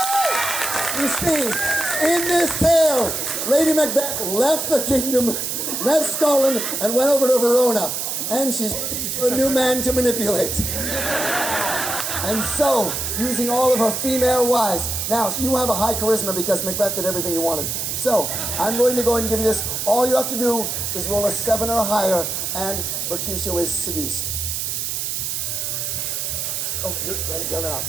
You see, in this tale, Lady Macbeth left the kingdom, left Scotland, and went over to Verona. And she's a new man to manipulate. And so, using all of her female wives. Now, you have a high charisma because Macbeth did everything you wanted. So, I'm going to go ahead and give you this. All you have to do is roll a 7 or higher, and Mercutio is seduced. Oh, you're ready. Get it out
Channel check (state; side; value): noise; right; hiss, 2 dB below the sound